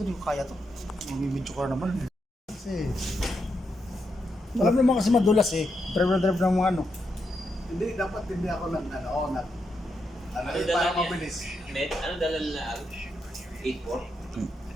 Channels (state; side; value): normal; both; correlation 0.83